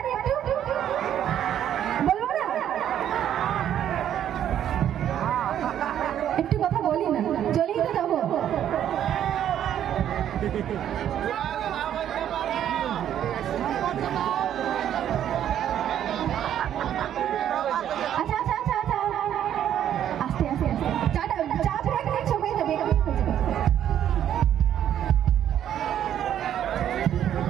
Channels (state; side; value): quieter; left; 10.4 dB